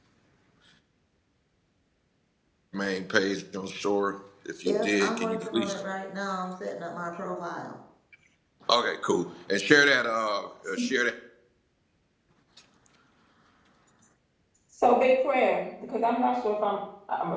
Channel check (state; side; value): identical; both; correlation 1.00